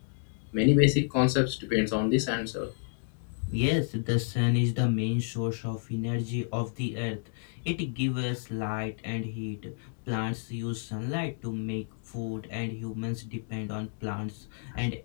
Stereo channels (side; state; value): right; silent; digital silence